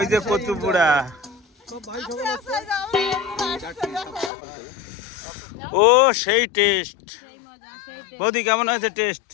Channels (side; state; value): right; drops out; at 4.3 s